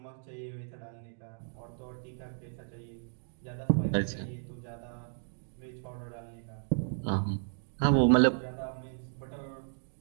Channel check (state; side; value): silent; left; digital silence